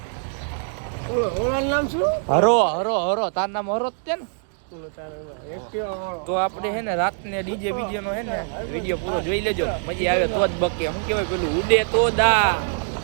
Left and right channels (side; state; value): left; silent; digital silence